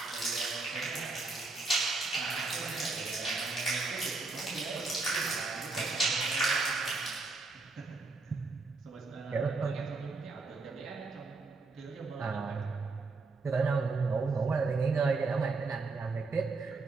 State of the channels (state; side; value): quieter; left; 3.8 dB